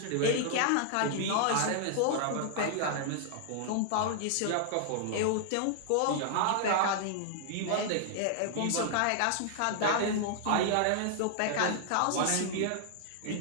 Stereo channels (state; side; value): different; both; correlation -0.01